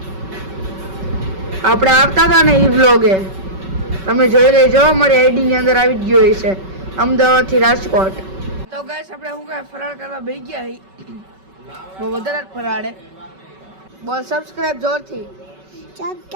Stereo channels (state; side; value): late; left; 5.3 ms